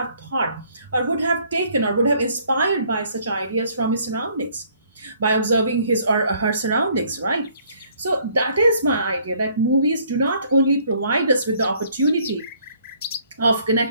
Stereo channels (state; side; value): inverted; both; correlation -0.63